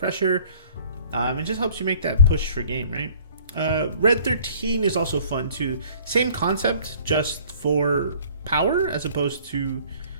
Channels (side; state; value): both; inverted; correlation -0.53